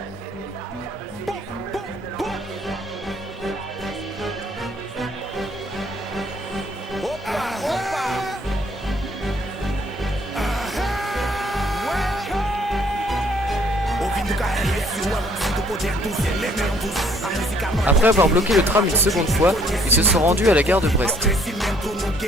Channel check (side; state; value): both; normal; correlation 0.63